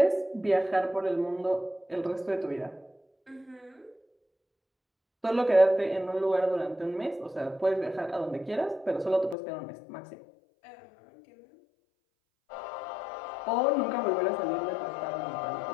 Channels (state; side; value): drops out; right; at 9.3 s